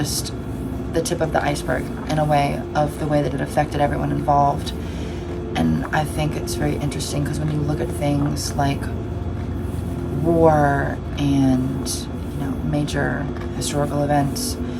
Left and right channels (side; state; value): both; identical; correlation 1.00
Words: the tip of the iceberg in a way of the way that it affected everyone involved. And I think it's very interesting because when you look at things like war and, you know, major historical events,